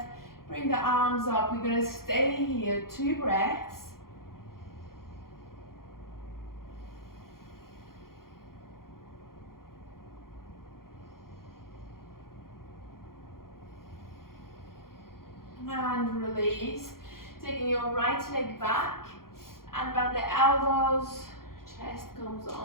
bring the arms up. We're going to stay here, 2 breaths. And release, taking your right leg back and bend the elbows, chest comes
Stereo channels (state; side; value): late; right; 0.92 ms